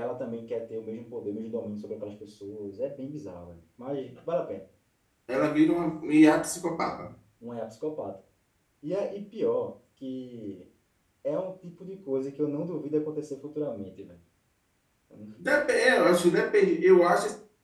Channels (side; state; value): both; identical; correlation 1.00